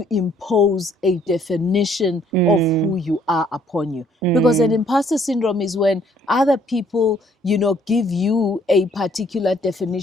impose a definition of who you are upon you. Because an imposter syndrome is when other people, you know, give you a particular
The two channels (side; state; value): both; normal; correlation 0.63